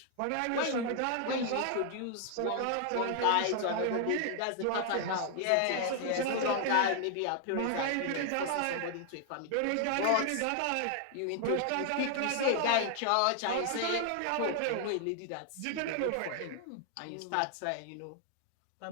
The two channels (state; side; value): different; both; correlation 0.00